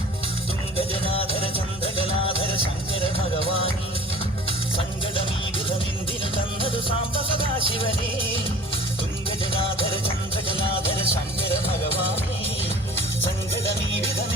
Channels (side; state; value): both; normal; correlation 0.46